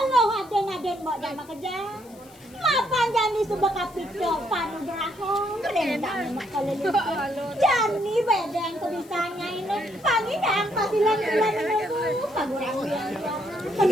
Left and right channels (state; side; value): noise; left; hiss, 25 dB below the sound